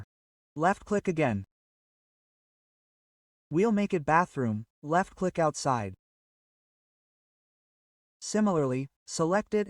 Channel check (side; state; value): both; identical; correlation 1.00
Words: Left click again. We'll make it bathroom, left click outside. Similarly, select it